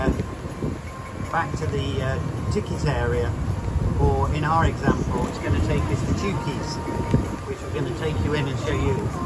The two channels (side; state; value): both; identical; correlation 1.00